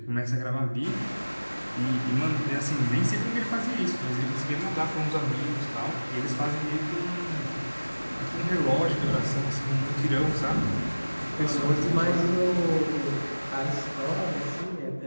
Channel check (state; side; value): inverted; both; correlation -1.00